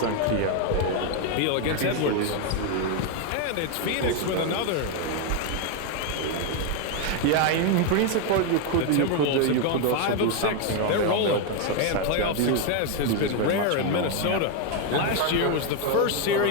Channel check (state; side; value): different; both; correlation 0.01